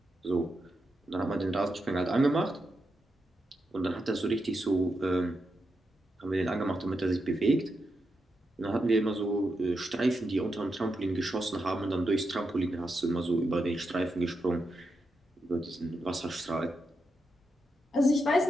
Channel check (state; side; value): normal; both; correlation 0.86